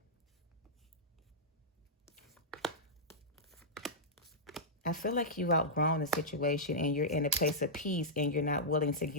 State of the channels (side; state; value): both; normal; correlation -0.11